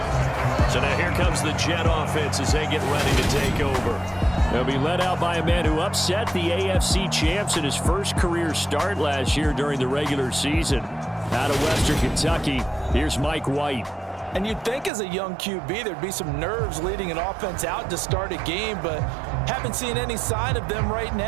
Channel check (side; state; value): left; drops out; at 14.9 s